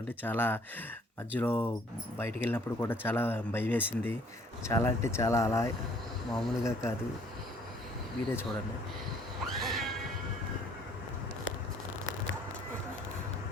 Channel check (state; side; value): normal; both; correlation 0.59